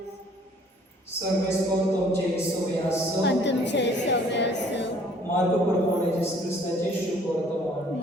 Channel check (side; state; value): both; normal; correlation 0.58